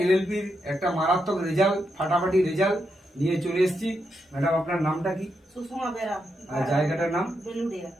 এলএলপির একটা মারাত্মক রেজাল্ট, ফাটাফাটি রেজাল্ট নিয়ে চলে এসেছি। ম্যাডাম, আপনার নামটা কি? সুষমা বেরা। আর জায়গাটার নাম? বেলুড়িয়া।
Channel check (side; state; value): both; normal; correlation 0.83